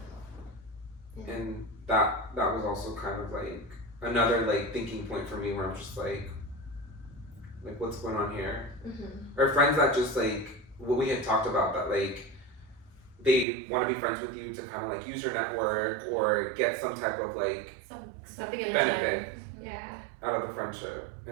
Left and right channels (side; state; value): left; drops out; at 13.5 s